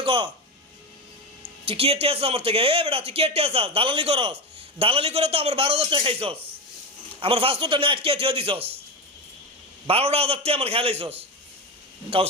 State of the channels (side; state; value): both; normal; correlation 0.17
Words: ক তুই কি এটে আছিস আমার থেকে? এ বেটা তুই কি এটে আছিস? দালালি করস, দালালি করে তো আমার 12,000 টাকা খাইছস, আমার পাসপোর্টটা নিয়ে আটকে থিয়ে দিছস, 12,000 টাকা আমার খেলাইছস